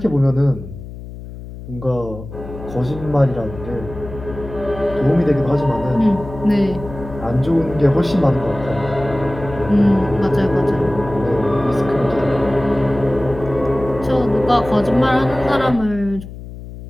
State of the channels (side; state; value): left; noise; hum, 13 dB below the sound